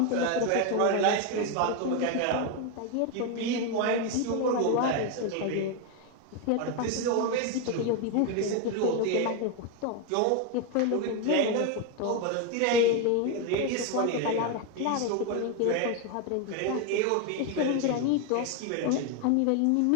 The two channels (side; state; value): both; different; correlation 0.02